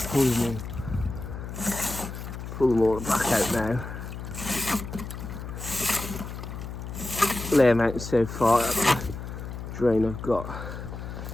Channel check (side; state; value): left; noise; hum, 8 dB below the sound